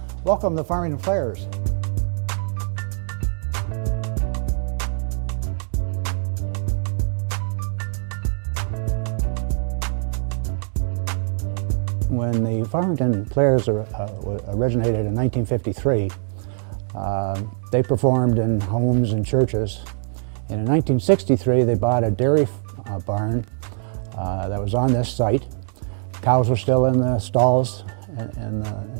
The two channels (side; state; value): left; silent; digital silence